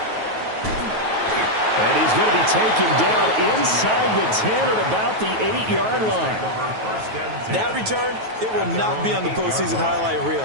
And he's going to be taken down inside the 10 at about the 8-yard line. That return, it will not be on the postseason highlight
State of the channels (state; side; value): late; left; 9.3 ms